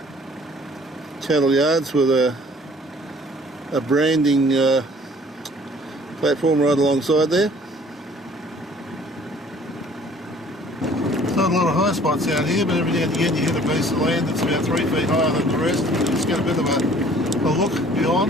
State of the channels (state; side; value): normal; both; correlation 0.54